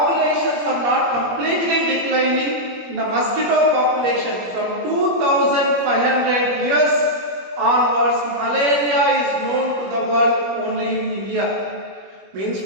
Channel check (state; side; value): late; left; 21 ms